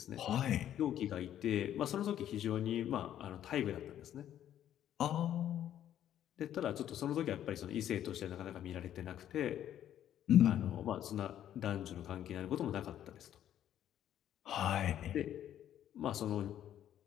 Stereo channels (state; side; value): quieter; right; 11.0 dB